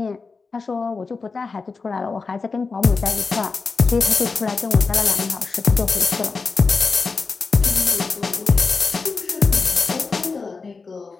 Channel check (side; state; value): right; quieter; 4.5 dB